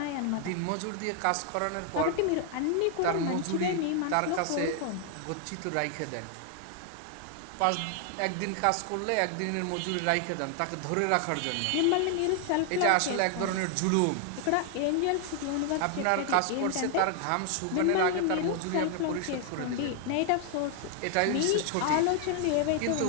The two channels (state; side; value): different; both; correlation 0.00